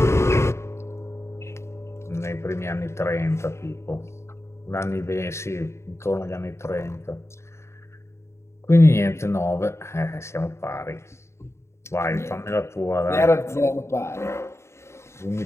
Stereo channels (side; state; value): right; late; 0.13 ms